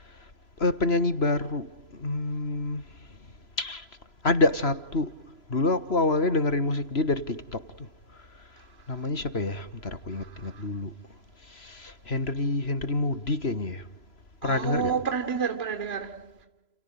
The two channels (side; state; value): right; late; 3.0 ms